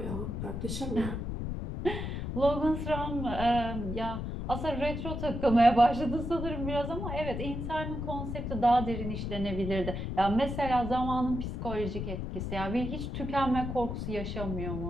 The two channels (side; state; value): left; noise; rumble, 4 dB below the sound